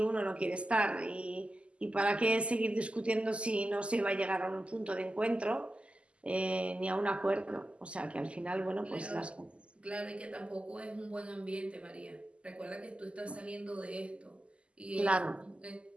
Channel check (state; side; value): late; left; 0.055 ms